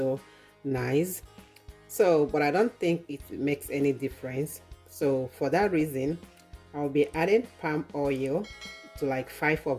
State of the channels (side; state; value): both; identical; correlation 1.00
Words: nice. So, but I don't think it makes any difference. So for that reason, I'll be adding palm oil to like 5